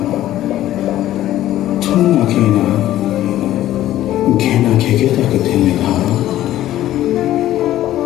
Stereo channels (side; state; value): right; quieter; 13.7 dB